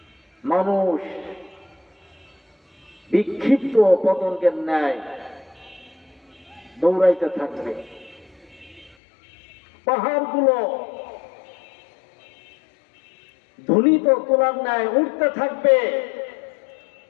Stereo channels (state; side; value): drops out; right; at 9.0 s